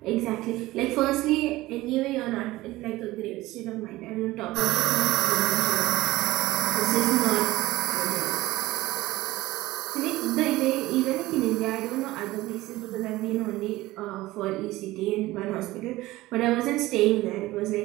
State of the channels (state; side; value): quieter; left; 18.0 dB